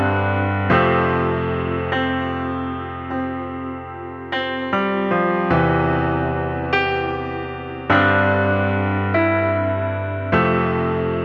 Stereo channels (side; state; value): both; identical; correlation 1.00